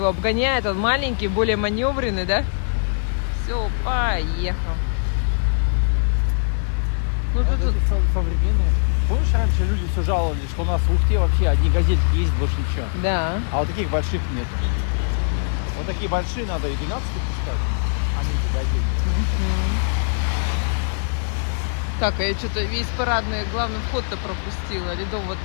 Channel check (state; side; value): silent; right; digital silence